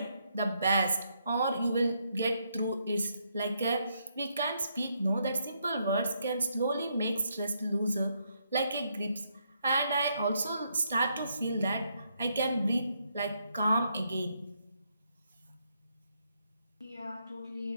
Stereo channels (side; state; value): both; inverted; correlation -0.76